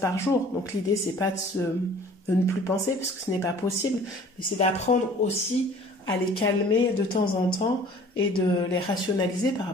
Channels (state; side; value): normal; both; correlation 0.50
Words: jour, donc l'idée c'est pas de ne plus penser, parce que ce n'est pas possible, mais c'est d'apprendre aussi à les calmer de temps en temps et de les rationaliser par